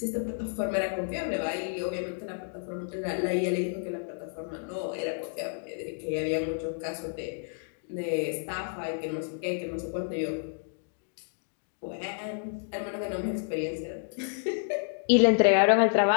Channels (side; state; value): right; silent; digital silence